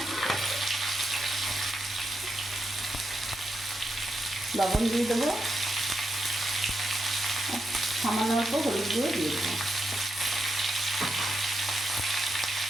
লবণ দিয়ে দেবো, সামান্য অল্প হলুদ গুঁড়ো দিয়ে দেবো।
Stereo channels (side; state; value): both; normal; correlation 0.84